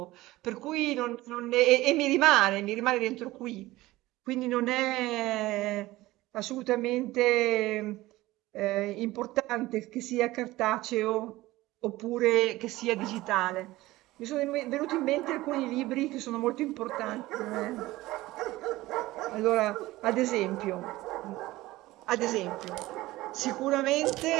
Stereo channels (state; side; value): quieter; left; 18.0 dB